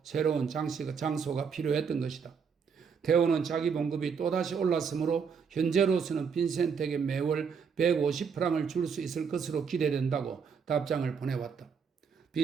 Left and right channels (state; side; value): quieter; left; 6.3 dB